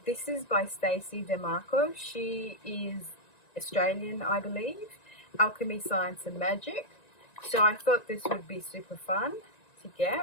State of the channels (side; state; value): right; late; 1.9 ms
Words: This is by Stacey DeMarco. She is Australian, I believe. Alchemy, Science and Magic. So I thought this would be super fun to